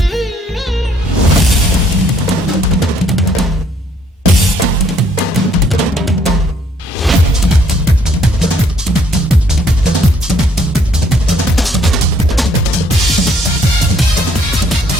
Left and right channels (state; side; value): normal; both; correlation 0.65